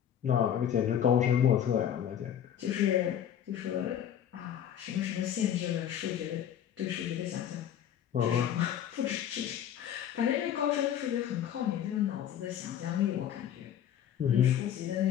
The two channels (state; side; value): quieter; right; 9.9 dB